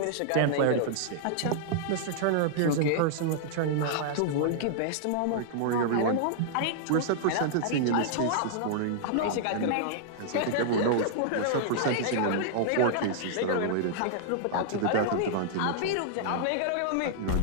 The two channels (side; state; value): both; different; correlation -0.01